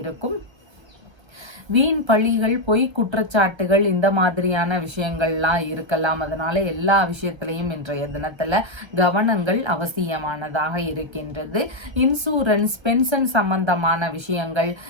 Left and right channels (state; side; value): late; left; 1.3 ms